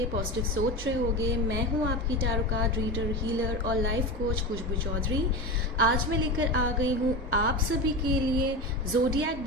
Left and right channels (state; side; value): normal; both; correlation 0.24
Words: पॉजिटिव सोच रहे होगे। मैं हूं आपकी टैरो कार्ड रीडर, हीलर और लाइफ कोच खुशबू चौधरी। आज मैं लेकर आ गई हूं आप सभी के लिए ज़ोडिएक